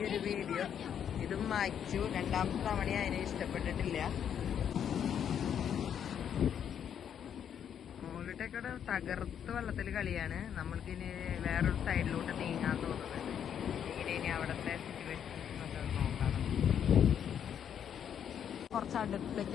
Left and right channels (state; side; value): quieter; right; 8.7 dB